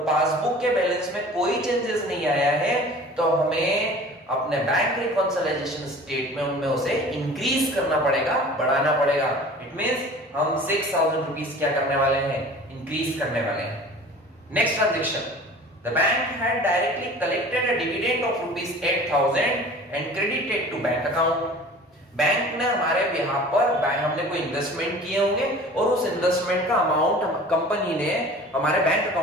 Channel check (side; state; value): both; normal; correlation 0.43